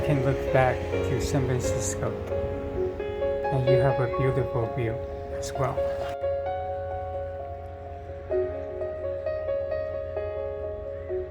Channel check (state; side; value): identical; both; correlation 1.00